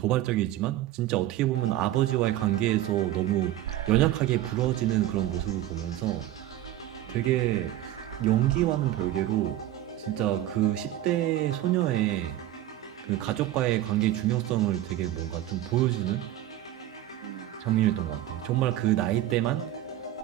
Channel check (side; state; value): left; quieter; 13.5 dB